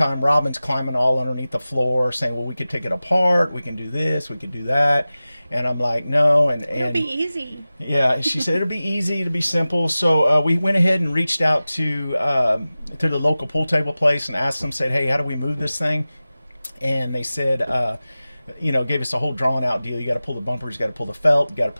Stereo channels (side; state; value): both; inverted; correlation -0.96